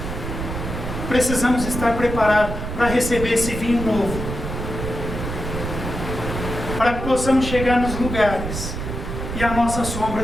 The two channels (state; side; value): noise; right; rumble, 5 dB below the sound